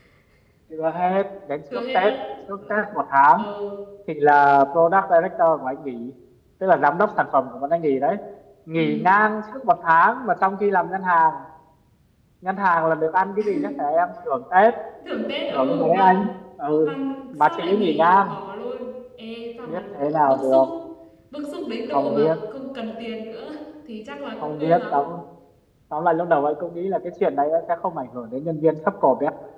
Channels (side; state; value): both; identical; correlation 1.00